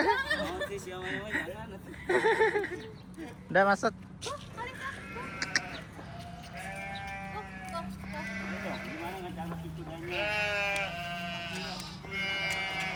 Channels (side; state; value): both; identical; correlation 1.00